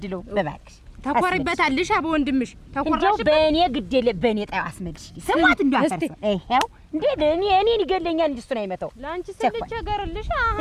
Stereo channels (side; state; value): both; identical; correlation 1.00